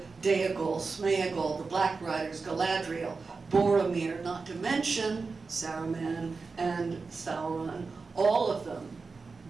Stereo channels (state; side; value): quieter; left; 4.4 dB